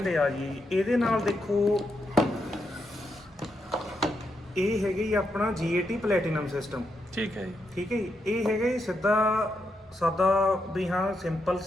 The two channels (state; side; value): normal; both; correlation 0.82